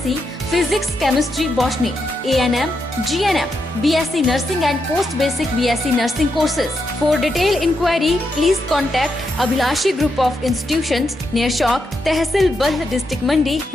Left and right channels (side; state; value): both; normal; correlation 0.83